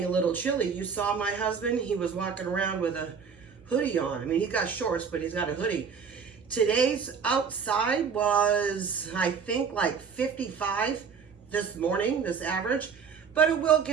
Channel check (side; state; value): left; quieter; 6.2 dB